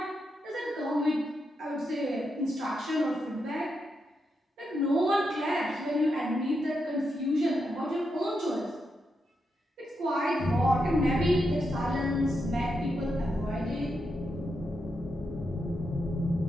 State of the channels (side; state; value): both; normal; correlation 0.84